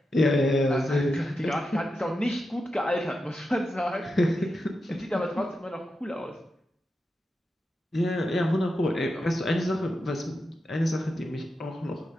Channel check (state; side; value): normal; both; correlation 0.88